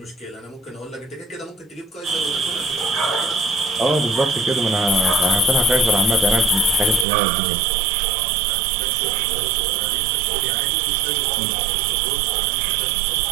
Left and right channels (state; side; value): drops out; left; at 7.1 s